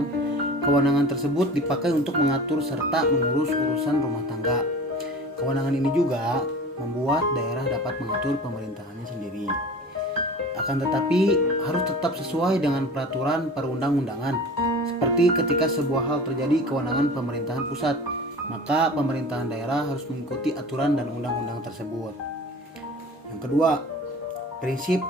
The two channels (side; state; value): both; normal; correlation 0.39